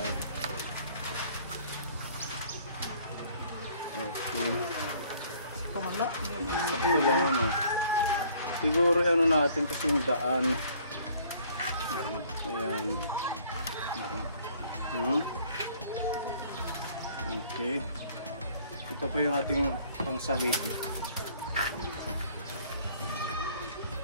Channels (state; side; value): inverted; both; correlation -0.58